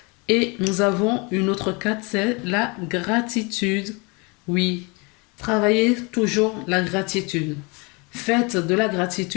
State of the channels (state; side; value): quieter; right; 29.2 dB